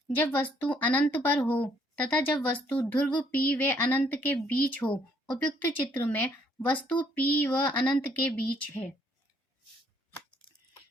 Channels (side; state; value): both; normal; correlation 0.66